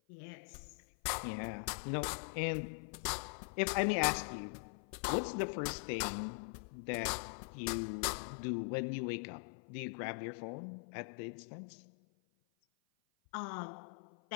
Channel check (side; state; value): right; silent; 50 dB below the other